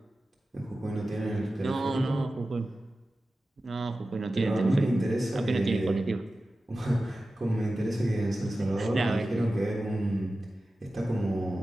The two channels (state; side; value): normal; both; correlation 0.94